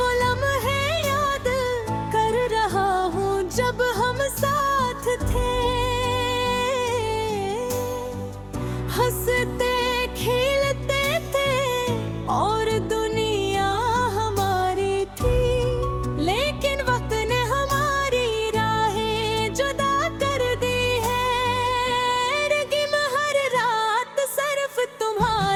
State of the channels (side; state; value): both; identical; correlation 1.00